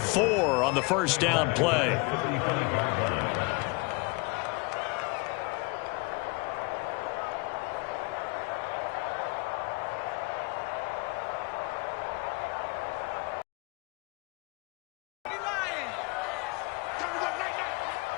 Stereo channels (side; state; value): right; quieter; 27.6 dB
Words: on the first down play.